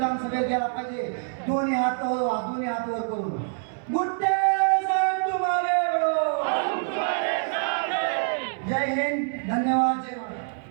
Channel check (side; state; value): left; silent; 61 dB below the other